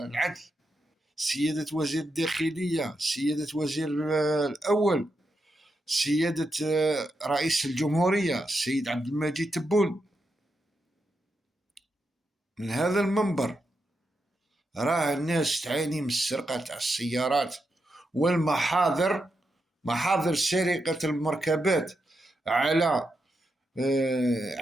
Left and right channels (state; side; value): normal; both; correlation 0.85